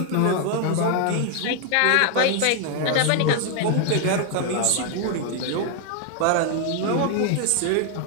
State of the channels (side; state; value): both; different; correlation 0.00